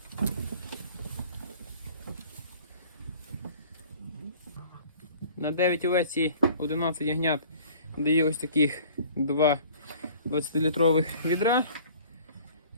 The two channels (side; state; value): both; inverted; correlation -0.50